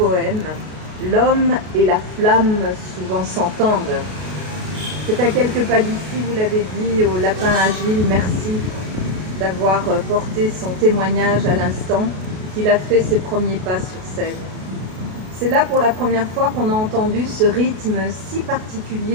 l'homme et la flamme souvent s'entendent. C'est à quelques pas d'ici, vous l'avez dit, au Lapin Agile, merci d'avoir porté son témoignage à l'instant, qu'il a fait ses premiers pas sur scène. C'est là pour la première fois qu'on a entendu ce rythme si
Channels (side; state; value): left; late; 33 ms